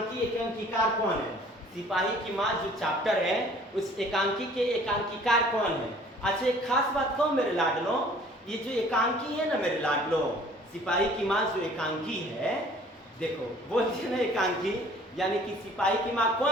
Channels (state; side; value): normal; both; correlation 0.52